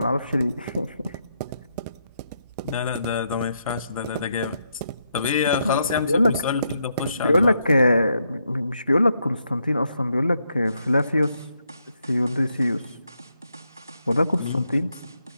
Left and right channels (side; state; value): both; inverted; correlation -0.79